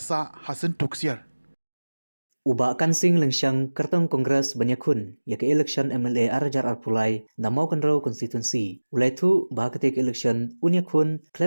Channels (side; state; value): both; inverted; correlation -1.00